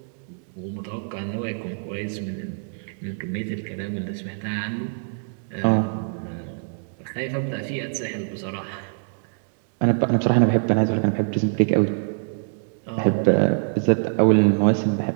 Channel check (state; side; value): silent; left; digital silence